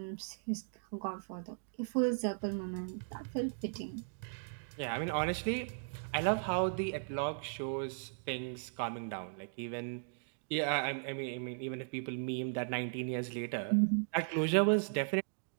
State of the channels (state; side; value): silent; left; digital silence